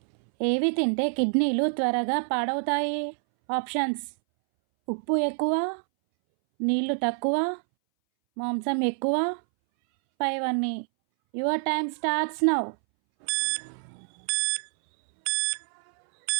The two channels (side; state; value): left; silent; 60 dB below the other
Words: ఏవి తింటే కిడ్నీలు త్వరగా పాడవుతాయి? ఆప్షన్స్: ఉప్పు ఎక్కువ, నీళ్లు తక్కువ, మాంసం ఎక్కువ, పైవన్నీ. Your time starts now.